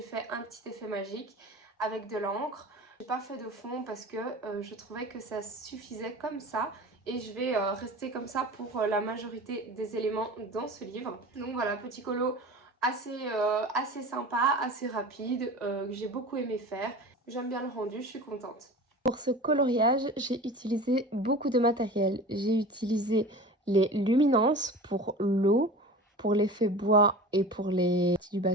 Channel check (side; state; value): both; normal; correlation 0.35